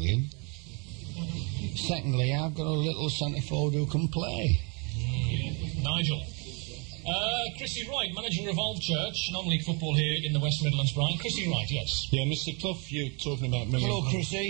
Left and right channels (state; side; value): quieter; left; 33.5 dB